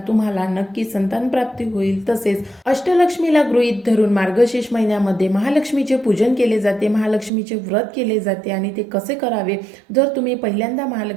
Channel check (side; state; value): left; drops out; at 7.3 s